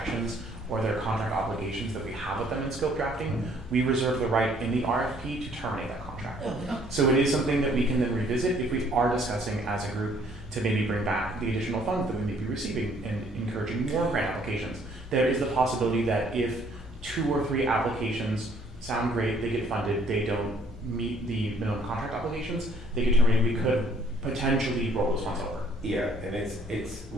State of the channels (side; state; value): both; normal; correlation 0.61